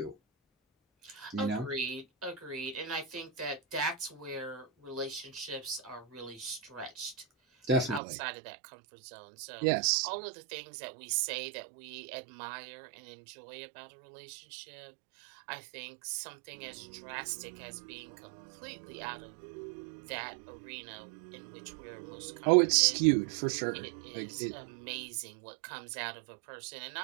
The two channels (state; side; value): drops out; left; at 8.0 s